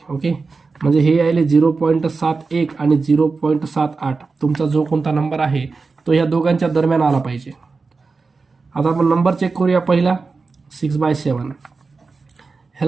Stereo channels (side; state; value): left; quieter; 4.3 dB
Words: ओके, म्हणजे हे यायले 0.71 आणि 0.78. तुमचा जो कोणता नंबर आहे तो ह्या दोघांच्या दरम्यान आला पाहिजे. आता आपण नंबर चेक करूया. पहिला 6/7,